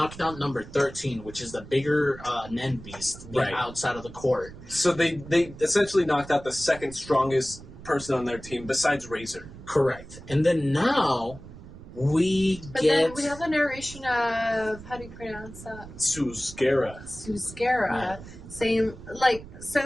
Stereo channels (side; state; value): right; noise; rumble, 16 dB below the sound